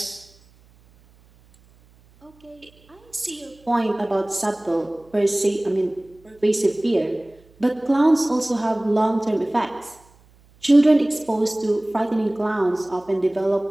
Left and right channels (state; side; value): noise; right; hum, 30 dB below the sound